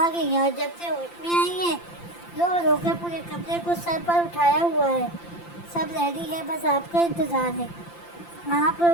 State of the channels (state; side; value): late; right; 5.8 ms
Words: گئی ہیں اور جب سے ہوش میں آئی ہیں رو رو کر پورے کمرے کو سر پر اٹھایا ہوا ہے. سب ریڈی ہے، بس آپ کا انتظار ہے. آپ